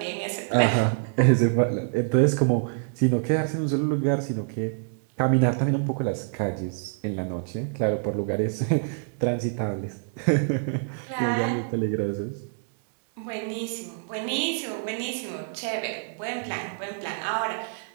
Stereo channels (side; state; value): left; silent; digital silence